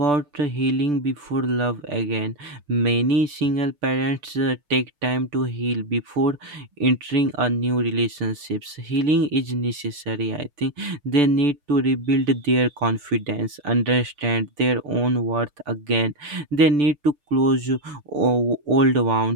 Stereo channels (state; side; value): late; left; 6.8 ms